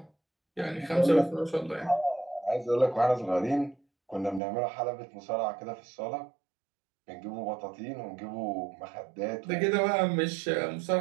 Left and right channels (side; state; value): left; drops out; at 4.4 s